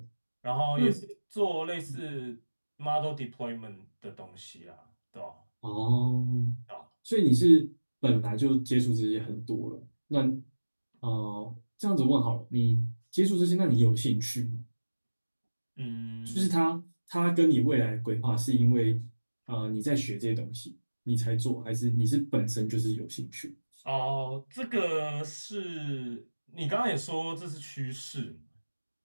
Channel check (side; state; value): both; inverted; correlation -1.00